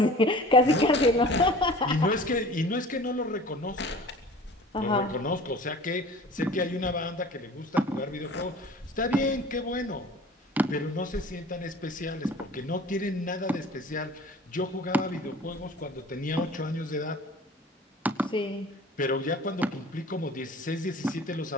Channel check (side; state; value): both; normal; correlation 0.43